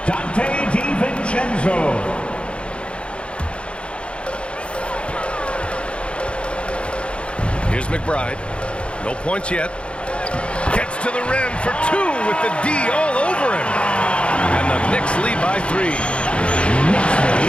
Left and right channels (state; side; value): late; right; 0.058 ms